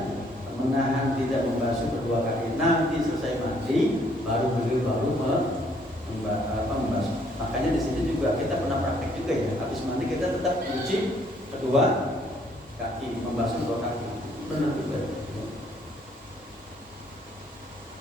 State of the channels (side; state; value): both; normal; correlation 0.66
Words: menahan tidak membasuh kedua kaki. Nanti selesai mandi baru beliau membasuh. Makanya di sini juga kita pernah praktek juga ya. Habis mandi kita tetap cuci kedua kaki, membasuh kedua kaki. Benar juga.